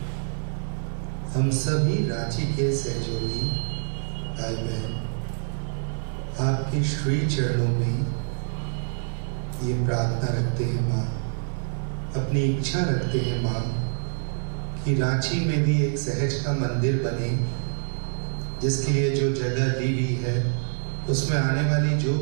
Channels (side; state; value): left; silent; 61 dB below the other